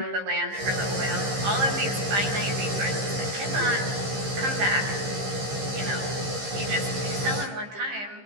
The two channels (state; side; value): late; left; 15 ms